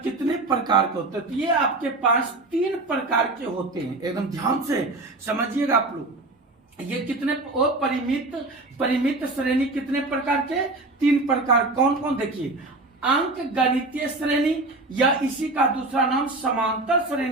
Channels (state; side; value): quieter; left; 3.0 dB